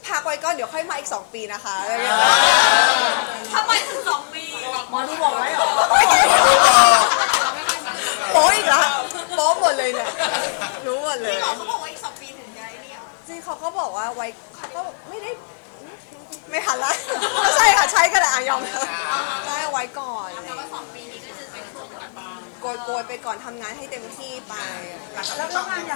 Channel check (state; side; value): silent; right; 66 dB below the other